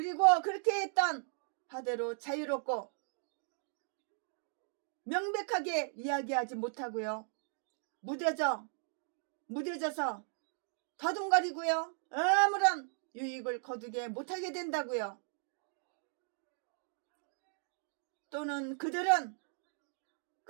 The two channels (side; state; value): left; silent; digital silence